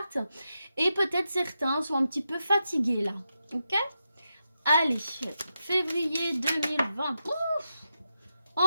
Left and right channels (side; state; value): both; inverted; correlation -0.87